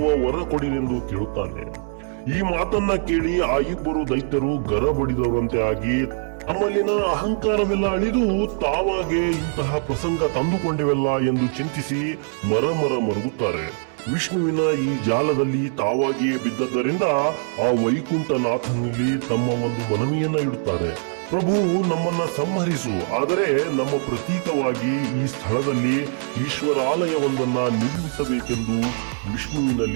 ವರ ಕೊಡಿರೆಂದು ಕೇಳುತ್ತಾನೆ. ಈ ಮಾತನ್ನ ಕೇಳಿ ಆ ಇಬ್ಬರು ದೈತ್ಯರು ಗರಬಡಿದವರಂತೆ ಆಗಿ ತಮ್ಮಲ್ಲಿನ ಅಹಂಕಾರವೆಲ್ಲ ಅಳಿದು ತಾವಾಗೆ ಇಂತಹ ಪ್ರಸಂಗ ತಂದುಕೊಂಡೆವಲ್ಲ ಎಂದು ಚಿಂತಿಸಿ ಮರಗುತ್ತಾರೆ. ವಿಷ್ಣುವಿನ ಈ ಜಾಲದಲ್ಲಿ ತಾವಾಗಿಯೇ ಬಿದ್ದದ್ದರಿಂದ ಆ ವೈಕುಂಠನಾಥನಲ್ಲಿ ತಮ್ಮ ಒಂದು ಮನವಿಯನ್ನ ಇಡುತ್ತಾರೆ. ಪ್ರಭು, ನಮ್ಮನ್ನ ಸಂಹರಿಸು, ಆದರೆ ನಮ್ಮ ಪ್ರತೀಕವಾಗಿ ಈ ಸ್ಥಳದಲ್ಲಿ ಈಶ್ವರಾಲಯವೊಂದನ್ನ ನಿರ್ಮಿಸಬೇಕೆಂದು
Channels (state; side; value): silent; left; 64 dB below the other